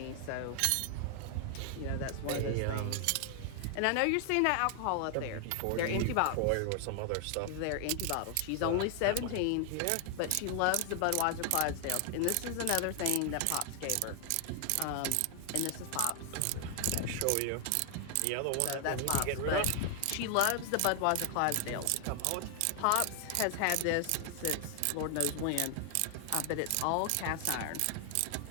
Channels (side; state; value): both; different; correlation 0.00